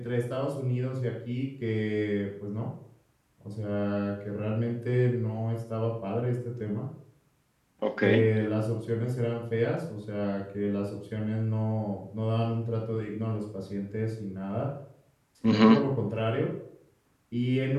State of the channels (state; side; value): identical; both; correlation 1.00